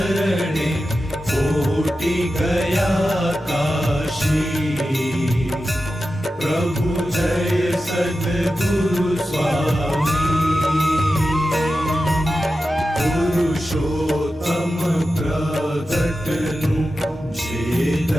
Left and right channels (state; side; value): normal; both; correlation 0.92